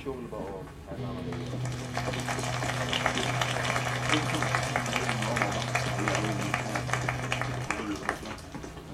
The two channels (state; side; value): identical; both; correlation 1.00